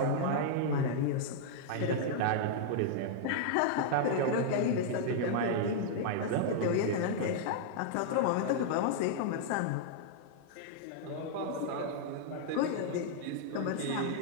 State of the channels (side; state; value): both; different; correlation -0.01